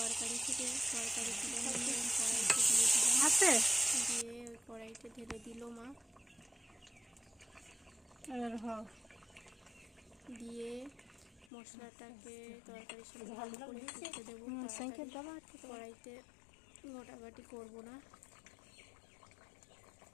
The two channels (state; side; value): drops out; right; at 11.5 s